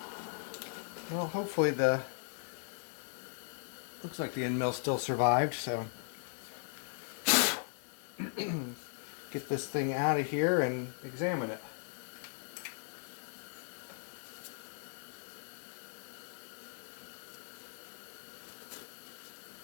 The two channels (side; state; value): right; silent; 53 dB below the other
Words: Well, hopefully looks like the end mill still survived, so get this thing out of here and examine it.